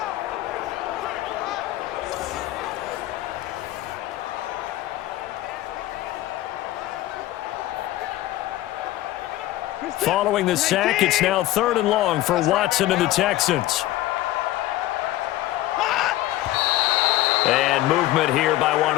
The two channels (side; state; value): right; quieter; 15.6 dB